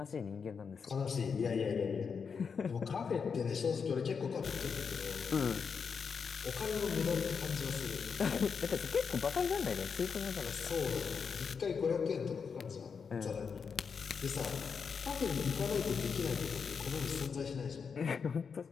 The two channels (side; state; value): right; quieter; 6.0 dB